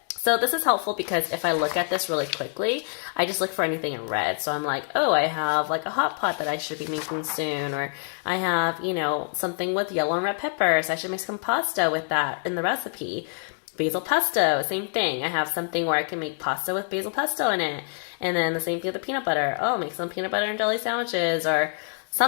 So this is helpful because if I look at this really quickly, I just look for anything in red. So I'm like, oh, I have like a hot pot that I should be making soon, or I have, something with yellow and red peppers. I should make some pasta with that in the recipe. Basil pesto, same thing. I have something where I can make pasta with basil pesto in it. And then the same thing with the peanut butter. Oh, make some peanut butter and jelly sandwiches or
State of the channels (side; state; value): right; silent; 58 dB below the other